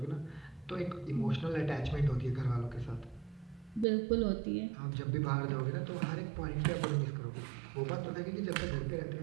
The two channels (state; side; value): drops out; left; at 3.9 s